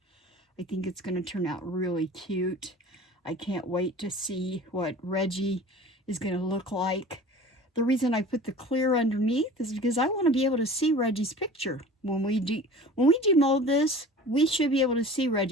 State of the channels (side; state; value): both; normal; correlation 0.41